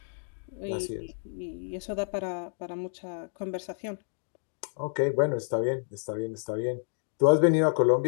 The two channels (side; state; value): right; silent; digital silence